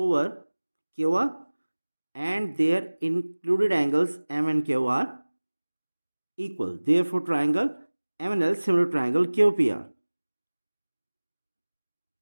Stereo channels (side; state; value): both; inverted; correlation -1.00